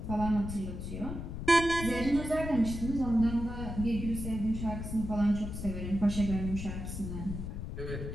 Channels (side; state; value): left; noise; rumble, 6 dB below the sound